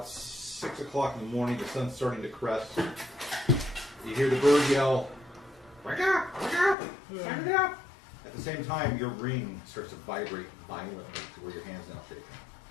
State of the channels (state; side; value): drops out; right; at 6.8 s